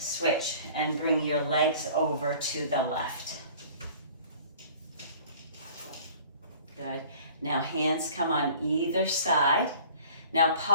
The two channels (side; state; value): both; inverted; correlation -0.50